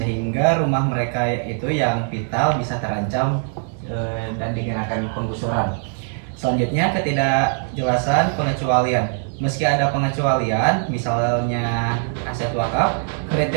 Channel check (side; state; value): left; silent; digital silence